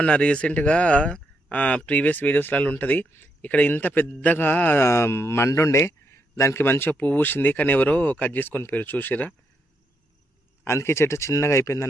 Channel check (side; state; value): both; normal; correlation 0.79